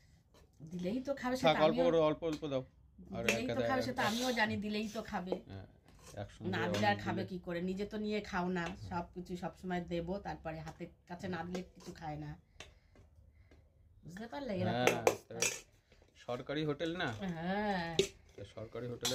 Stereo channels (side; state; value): both; identical; correlation 1.00